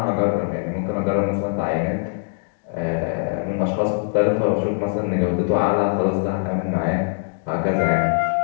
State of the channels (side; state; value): right; silent; digital silence